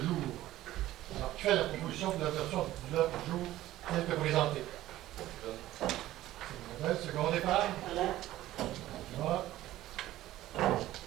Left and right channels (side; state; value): left; quieter; 14.9 dB